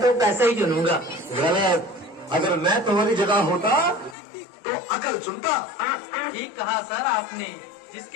तो पैसे ही चुनूंगा। गलत। अगर मैं तुम्हारी जगह होता तो अकल चुनता। ठीक कहा सर आपने।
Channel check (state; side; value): drops out; right; at 4.2 s